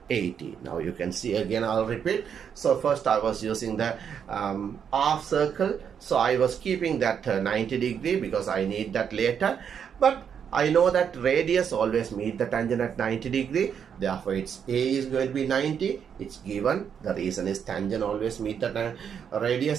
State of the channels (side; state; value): left; quieter; 7.7 dB